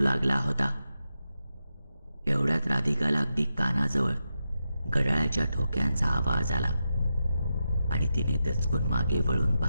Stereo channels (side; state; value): both; inverted; correlation -0.88